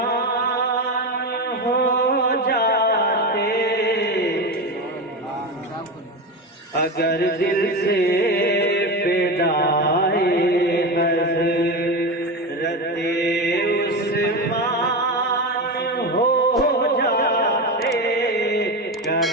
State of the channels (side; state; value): both; normal; correlation 0.20